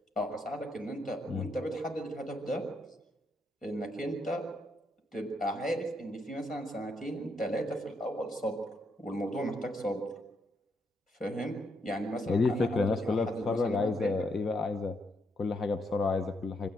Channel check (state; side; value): normal; both; correlation 0.77